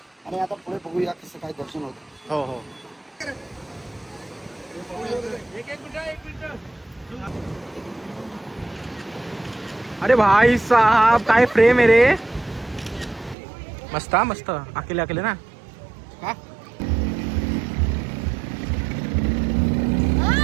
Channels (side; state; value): left; drops out; at 13.4 s